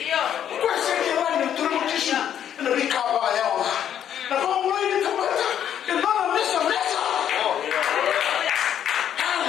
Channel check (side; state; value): right; quieter; 9.7 dB